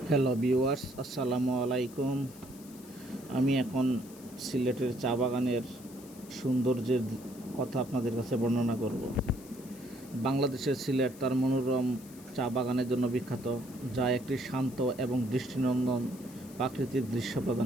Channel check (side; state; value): left; noise; hiss, 20 dB below the sound